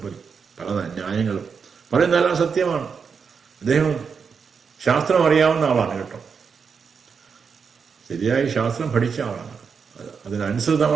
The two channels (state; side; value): quieter; left; 6.0 dB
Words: പല ന്യായങ്ങളും പറയുന്നതെല്ലാം സത്യമാണ്. അദ്ദേഹം ശാസ്ത്രം അറിയാവുന്ന ആളാണ് കേട്ടോ. ശരിയായി ശാസ്ത്രം പഠിച്ച ആളാണ്.